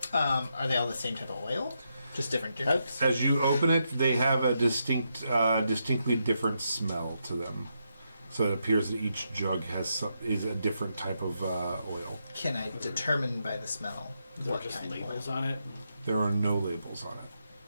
Are they all the same type of oil? Just different jugs? As you open it, they have a distinctly different smell to them. So it appears that each jug is a different type of oil. Can I determine by the smell Is there what just kind of labels oil? on it? There are no labels on it.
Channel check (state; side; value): inverted; both; correlation -0.82